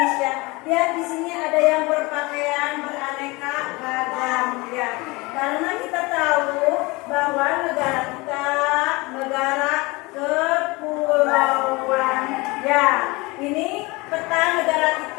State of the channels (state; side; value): quieter; right; 24.2 dB